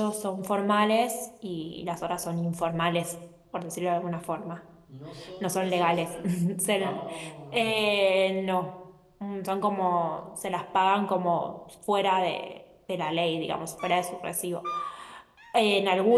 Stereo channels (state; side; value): identical; both; correlation 1.00